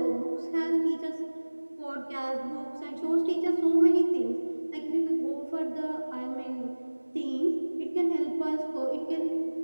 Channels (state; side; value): inverted; both; correlation -1.00